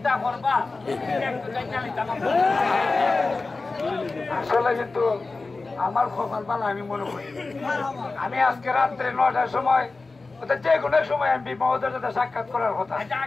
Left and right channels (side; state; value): right; quieter; 3.7 dB